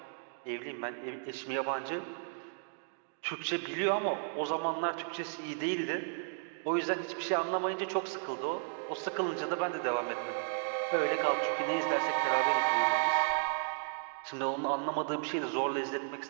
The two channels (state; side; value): silent; left; digital silence